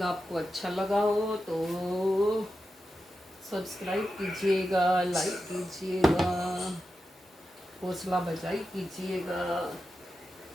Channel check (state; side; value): normal; both; correlation 0.90